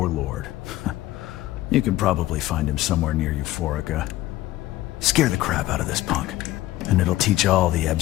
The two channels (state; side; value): quieter; right; 15.9 dB